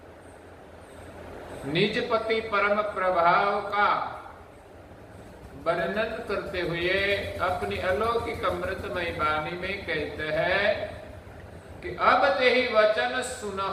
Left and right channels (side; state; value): both; identical; correlation 1.00